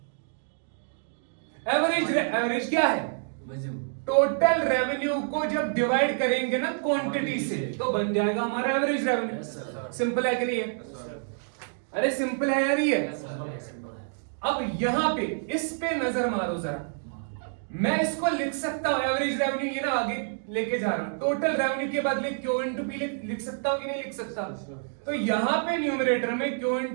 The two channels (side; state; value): left; silent; digital silence